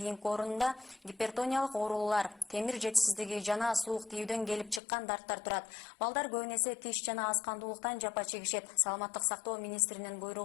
гипертониялык оорулар, темир жетишсиздиги жана суук тийүүдөн келип чыккан дарттар турат. Балдар көбүн эсе тиш жана аз кандуулуктан жапа чегишет. Саламаттык сактоо министринин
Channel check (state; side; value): drops out; right; at 4.8 s